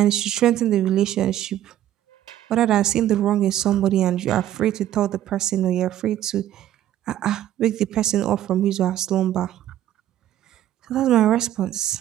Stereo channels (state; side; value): quieter; left; 12.3 dB